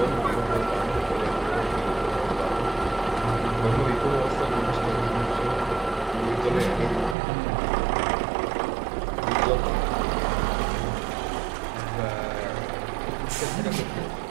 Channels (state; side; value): drops out; left; at 7.2 s